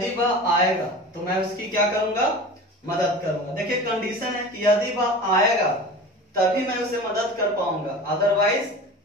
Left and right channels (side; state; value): both; normal; correlation 0.35